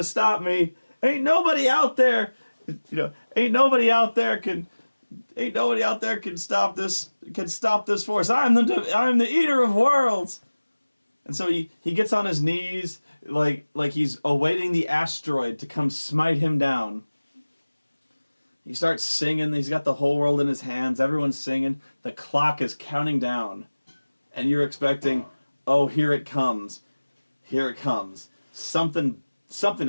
stop me. Ain't nobody out there, ain't nobody out there can stop this force. I'm the eater of worlds." And so he gets on his knees like he's awaiting the asteroid to come smite him down. He starts singing. He's got the whole world in his hands. Everyone's singing. The clock is counting down. And you're expecting, oh, here it comes. Here it comes. Something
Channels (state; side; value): inverted; both; correlation -1.00